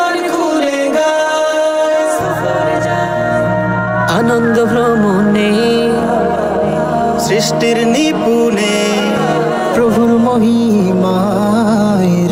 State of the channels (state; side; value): identical; both; correlation 1.00